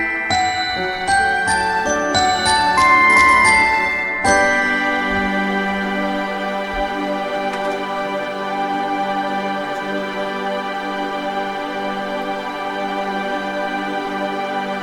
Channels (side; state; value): both; identical; correlation 1.00